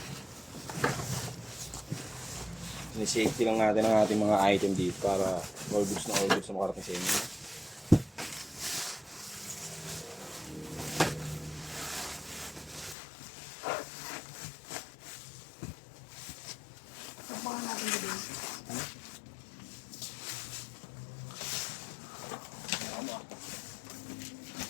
Ni-safety lang natin ang ating mga item dito para all goods na makarating sa inyo. Tapakan natin din.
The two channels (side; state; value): right; drops out; at 13.0 s